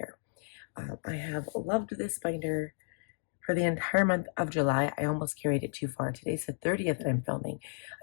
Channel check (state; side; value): silent; right; digital silence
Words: I have loved this binder for the entire month of July. I almost carried it too far. Today's the 30th that I'm filming.